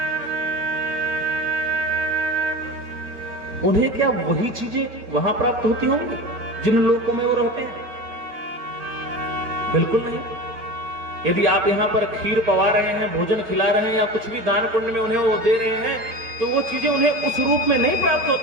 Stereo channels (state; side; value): late; left; 4.8 ms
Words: उन्हें क्या वही चीजें वहां प्राप्त होती होंगी जिन लोगों में वो रहते हैं? बिल्कुल नहीं। यदि आप यहां पर खीर पवा रहे हैं, भोजन खिला रहे हैं, या कुछ भी दान पुण्य में उन्हें वो दे रहे हैं, तो वो चीजें उन्हें उस रूप में नहीं प्राप्त